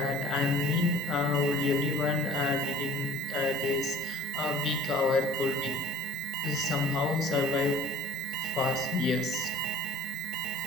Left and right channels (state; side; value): normal; both; correlation 0.48